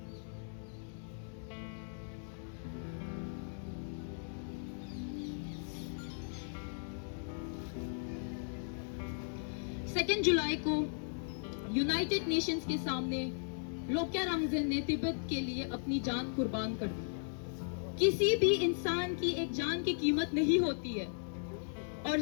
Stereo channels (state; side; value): silent; right; digital silence